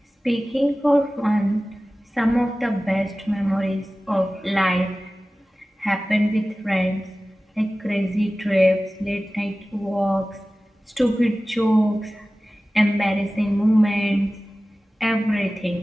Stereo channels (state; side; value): normal; both; correlation 0.96